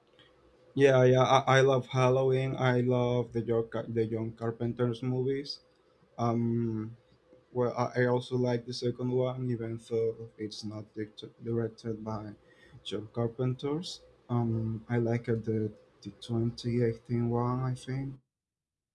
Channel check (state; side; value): identical; both; correlation 1.00